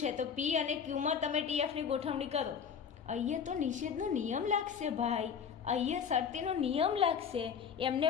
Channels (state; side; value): quieter; right; 7.1 dB